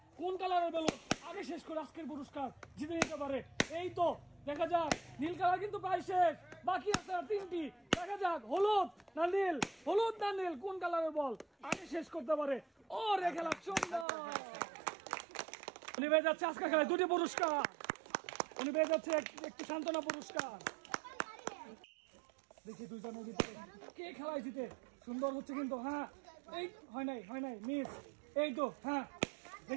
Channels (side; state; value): left; drops out; at 14.1 s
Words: কোন কালারের বেলুন আগে শেষ করে আজকের পুরস্কার জিতে নিতে পারে। এই তো দেখা যাক, নীল কালার কিন্তু প্রায় শেষ, বাকি আছে আর 3টি। দেখা যাক হলুদ না নীল, কোন কালারের বল আগে শেষ করতে পারে। ও রে খেলা সুন্দর। উনি পেয়ে যাচ্ছে আজকের খেলায় 2টি পুরস্কার। উনি পেয়ে যাচ্ছে একটি সান্ত্বনা পুরস্কার। দেখি দুজনের ভিতরে কে খেলায় জিতে। সুন্দর হচ্ছে কিন্তু, হ্যাঁ এই হয় নাই মিস। এই তো হ্যাঁ